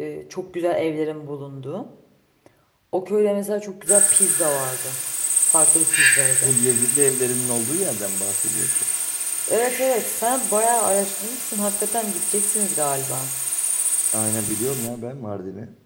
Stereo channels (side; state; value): both; identical; correlation 1.00